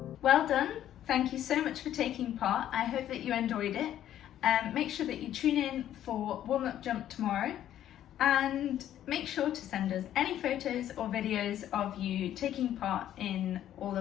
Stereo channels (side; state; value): right; quieter; 11.5 dB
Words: Well done. Thank you so much for taking part. I hope that you enjoyed it. Make sure that you tune in for warm-up jump tomorrow and make sure to send us any photos or videos of you taking part in all